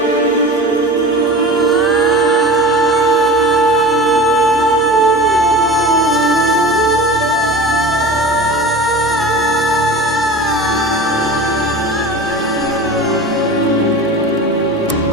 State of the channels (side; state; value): both; normal; correlation 0.34